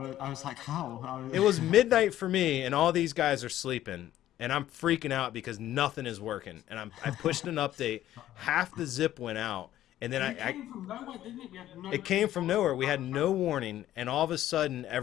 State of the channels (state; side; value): quieter; right; 13.1 dB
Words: I was like, how? It was midnight for me, and all these guys are sleeping, and I'm freaking out because nothing is working. And I pushed an update, half the zip went out, and then It came from nowhere, didn't it? We had no it came from nowhere. We had no warning, and all of a sudden